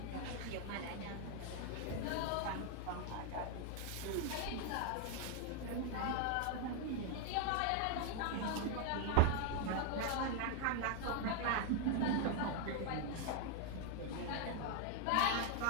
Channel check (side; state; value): both; different; correlation 0.00